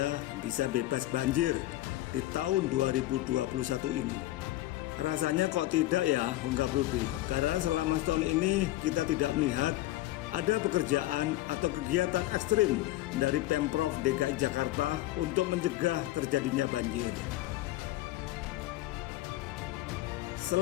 bisa bebas banjir di tahun 2021 ini? Rasanya kok tidak ya, Enggak Rudy. Karena selama setahun ini kita tidak melihat ada pekerjaan atau kegiatan ekstrim dari Pemprov DKI Jakarta untuk mencegah terjadinya banjir.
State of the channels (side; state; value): right; quieter; 16.3 dB